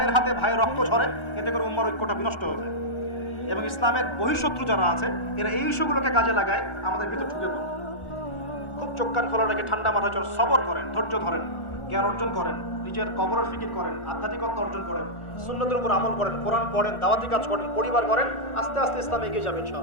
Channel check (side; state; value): right; late; 1.4 ms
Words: হাতে ভাইয়ের রক্ত ঝরে, এতে করে উম্মার ঐক্যটা বিনষ্ট হয়ে যায়। এবং ইসলামের বহিঃশত্রু যারা আছে, এরা এই ইস্যুগুলোকে কাজে লাগায় আমাদের ভিতর ঢুকে পড়ে। খুব চোখ কান খোলা রেখে ঠান্ডা মাথায় সবর করেন, ধৈর্য ধরেন, জ্ঞান অর্জন করেন, নিজের কবরের ফিকির করেন, আধ্যাত্মিকতা অর্জন করেন, সুন্নতের উপর আমল করেন, কোরআন পড়েন, দাওয়াতি কাজ করেন, পরিবার করেন, আস্তে আস্তে ইসলাম এগিয়ে যাবে